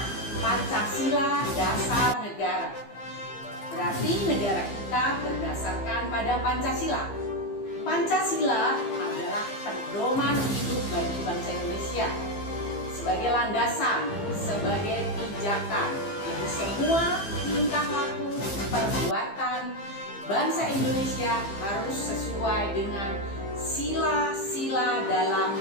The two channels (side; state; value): right; late; 15 ms